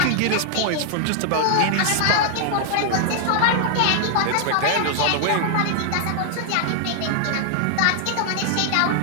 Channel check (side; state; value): both; different; correlation 0.00